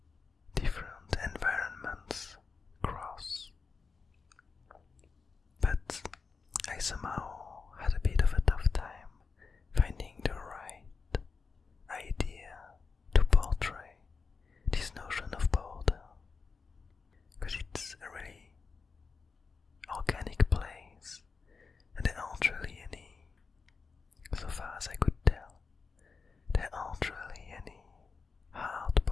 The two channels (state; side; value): quieter; right; 4.8 dB